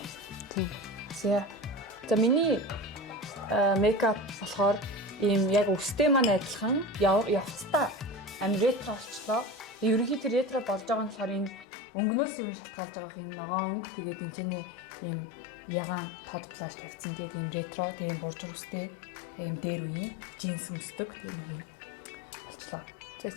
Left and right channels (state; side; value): drops out; right; at 11.7 s